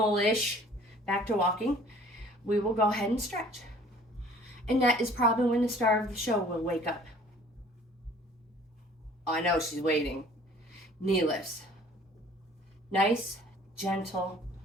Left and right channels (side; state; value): both; normal; correlation 0.52